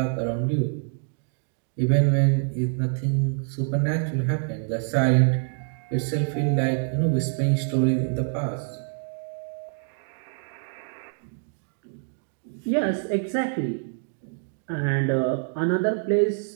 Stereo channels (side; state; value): left; silent; 56 dB below the other